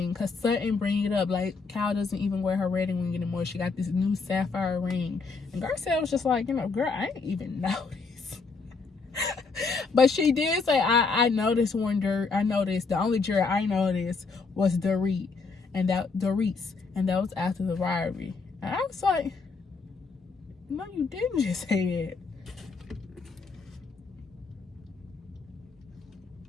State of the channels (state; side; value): quieter; right; 4.5 dB